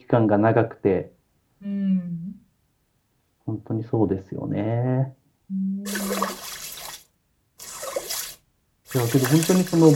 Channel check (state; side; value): identical; both; correlation 1.00